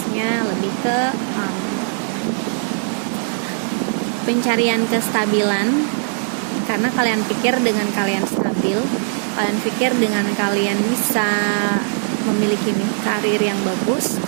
lebih ke pencarian kestabilan, karena kalian pikir dengan kalian stabil, kalian pikir dengan kalian bisa memiliki karir yang bagus,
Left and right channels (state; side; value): silent; left; 57 dB below the other